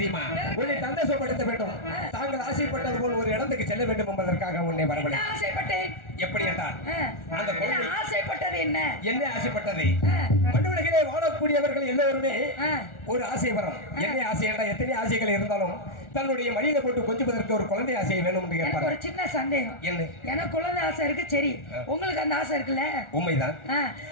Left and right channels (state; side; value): late; right; 1.4 ms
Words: உன்னை சந்தோஷப்படுத்த வேண்டும். தாங்கள் ஆசைப்பட்டது போல் ஒரு இடத்துக்கு செல்ல வேண்டும் என்பதற்காக உன்னை என்ன வரவழை ஆசைப்பட்டேன் எப்படி என்றால் அந்த என்ன குழந்தை ஆசைப்பட்டது என்ன என்ன ஆசைப்பட்டது ஆ, மண்ணுலகிலே வாழக்கூடியவர்கள் எல்லோருமே ஆ. ஒரு ஆசை வரும் என்ன ஆசை என்றால் எத்தனை ஆசைகள் இருந்தாலும் தன்னுடைய மடியில போட்டு கொஞ்சுவதற்கு ஒரு குழந்தை ஆசை வேணும் என்று எனக்கு கேட்பார் ஒரு சின்ன சந்தேகம் என்ன எனக்கு குழந்தை ஆசை இருக்கு சரி உங்களுக்கு அந்த ஆசை இருக்குல்ல உண்மைதான் ஆ,